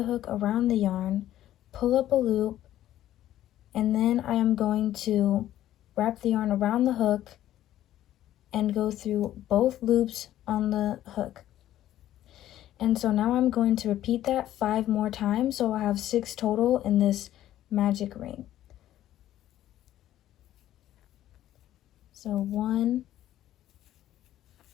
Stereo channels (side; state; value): right; quieter; 12.9 dB